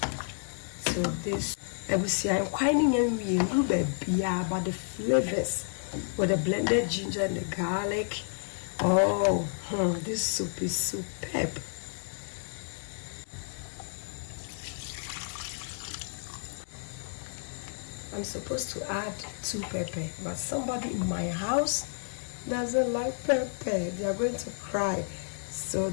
to this. I will see I'm quite but the flavors with the blended ginger and the garlic. This soup is superb. I'm supposed to add 2 pepper, but somebody in my house doesn't like pepper. They are going to cry. So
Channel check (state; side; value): silent; right; digital silence